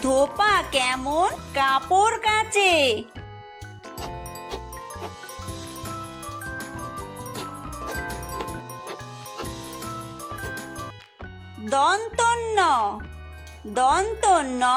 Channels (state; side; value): identical; both; correlation 1.00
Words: ধোপা কেমন কাপড় কাচে। দন্তন্য।